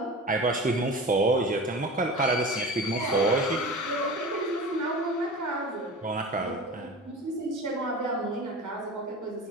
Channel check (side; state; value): both; normal; correlation 0.34